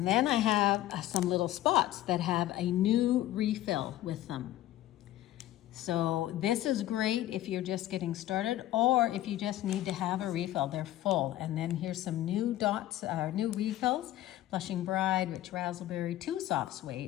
then I have some little spots that have a new refill with them. So this is great if you're just getting started or if you just need to have a refill. They're full. And then here's some new dots, new refills. Blushing Bride, Rich Razzleberry, 2 Soft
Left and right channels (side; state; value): right; quieter; 14.3 dB